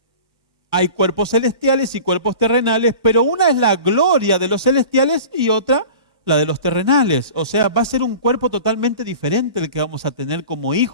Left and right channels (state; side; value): inverted; both; correlation -0.40